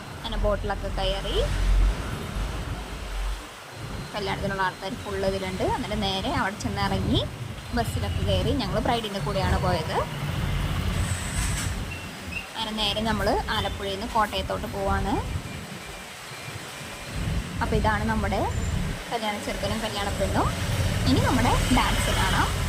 അങ്ങനെ ബോട്ടിലൊക്കെ കയറി കല്യാണത്തിനുള്ള ആൾക്കാർ ഫുള്ള് ഇതിലുണ്ട്. എന്നിട്ട് നേരെ അവിടെ ചെന്ന് ഇറങ്ങി ബസ്സിലൊക്കെ കയറി. ഞങ്ങൾ ബ്രൈഡിൻ്റെ കൂടെയാണ് പോയത്. അങ്ങനെ നേരെ നമ്മൾ ആലപ്പുഴയിൽ നിന്ന് കോട്ടയത്തോട്ട് പോവാണ്. അപ്പോൾ ഇതാണ് നമ്മുടെ കല്യാണ ചെറുക്കനും കല്യാണ പെണ്ണും. ഇനി നമ്മുടെ ഡാൻസ് കാണാം,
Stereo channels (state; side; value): identical; both; correlation 1.00